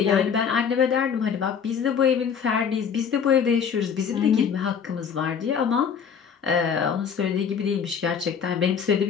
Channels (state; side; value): quieter; right; 7.0 dB